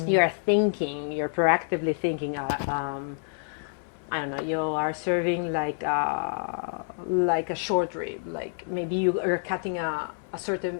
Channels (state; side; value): silent; right; 58 dB below the other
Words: you're proactively thinking, I don't know, you are serving like a short rib, like maybe you are cutting a